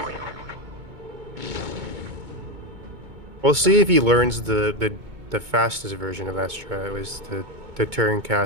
We'll see if he learns the fastest version of that strat, was to turn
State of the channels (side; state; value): left; late; 2.2 ms